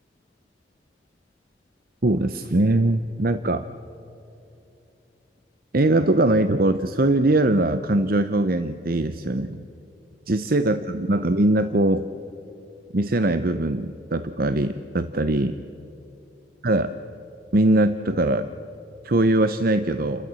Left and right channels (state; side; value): normal; both; correlation 0.52